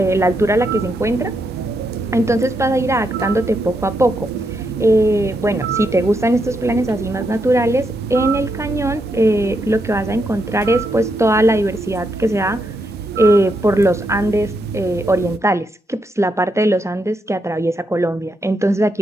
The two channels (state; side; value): normal; both; correlation 0.80